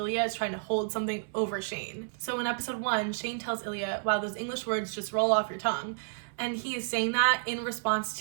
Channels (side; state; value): left; silent; 57 dB below the other